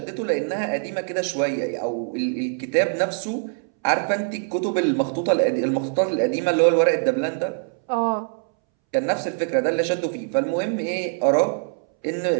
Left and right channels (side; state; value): left; silent; 63 dB below the other